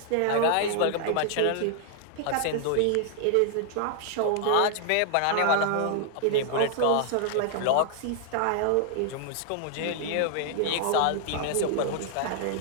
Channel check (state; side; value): different; both; correlation 0.00